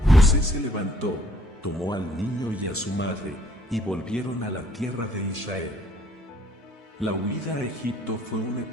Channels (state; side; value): normal; both; correlation 0.61